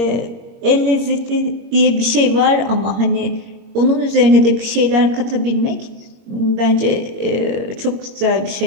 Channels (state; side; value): late; left; 22 ms